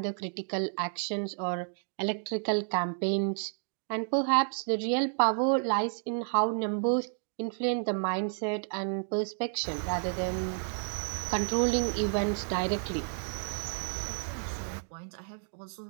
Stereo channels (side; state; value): left; silent; 57 dB below the other